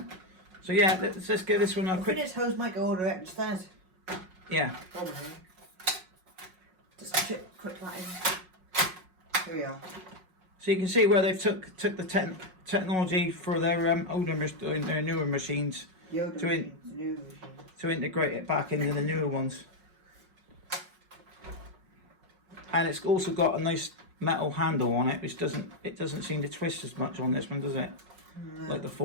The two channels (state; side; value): late; left; 5.5 ms